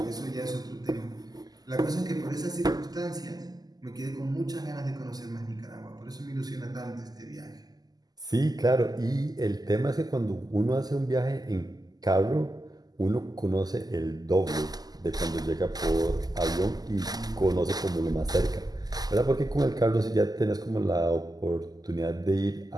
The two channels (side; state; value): left; late; 0.19 ms